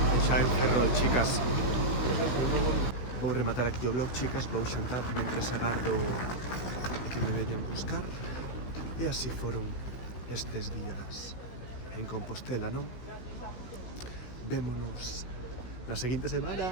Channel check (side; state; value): right; late; 16 ms